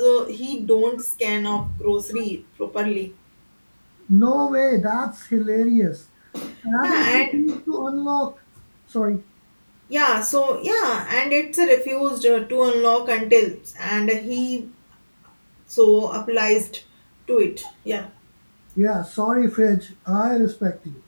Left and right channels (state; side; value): inverted; both; correlation -1.00